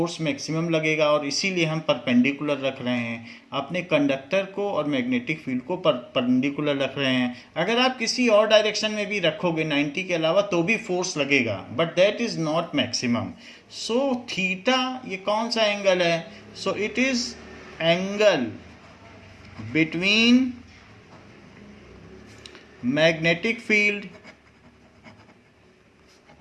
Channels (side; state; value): both; identical; correlation 1.00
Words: मैक्सिमम लगेगा. और इसीलिए हम परपेंडिकुलर रख रहे हैं अपने कंडक्टर को और मैग्नेटिक फील्ड को परपेंडिकुलर रख रहे हैं. अगर आप किसी और डायरेक्शन में भी रखोगे 90 के अलावा तो भी फोर्स लगेगा, but that is not maximum. So theta ये कौन सा एंगल है? सो it is angle between magnetic field